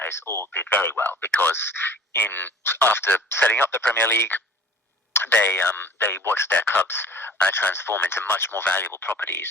all did very well, because after setting up the Premier League, they watched their clubs transform into much more valuable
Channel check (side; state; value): both; normal; correlation 0.47